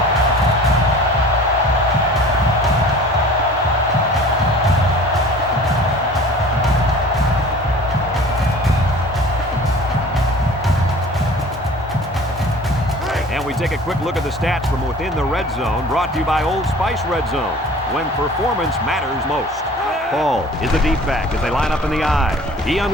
quick look at the stats from within the red zone, brought to you by Old Spice Red Zone, when performance matters most. Paul is the deep back as they line up in the I. He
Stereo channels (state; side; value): normal; both; correlation 0.45